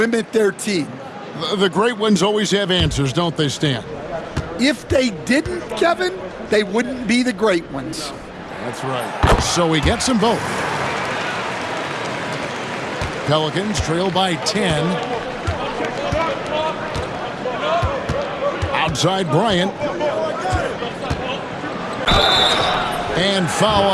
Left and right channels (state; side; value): identical; both; correlation 1.00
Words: their team. The great ones always have answers, don't they, Stan? If they didn't, Kevin, they wouldn't be the great ones. That's right. So he gets them both. Pelicans trail by 10. Outside Bryant. And foul